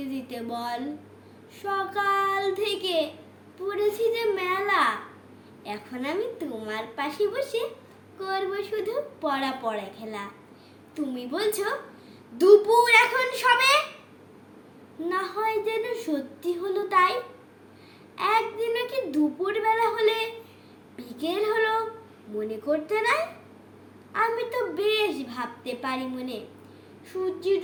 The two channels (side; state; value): both; identical; correlation 1.00